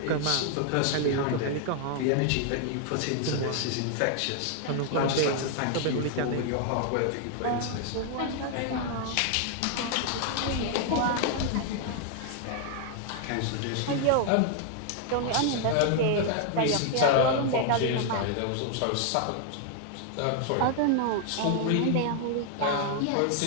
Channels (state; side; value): different; both; correlation 0.00